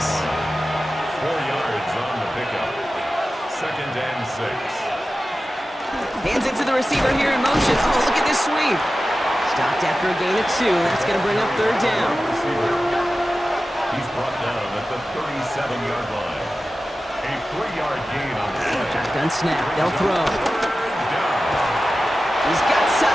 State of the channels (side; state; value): both; normal; correlation 0.94